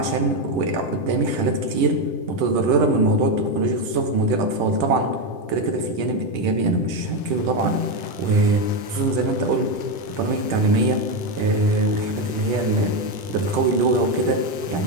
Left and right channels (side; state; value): left; late; 10 ms